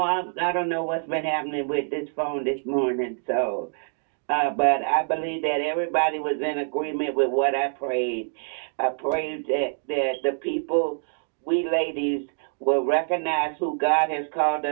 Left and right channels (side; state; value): left; silent; digital silence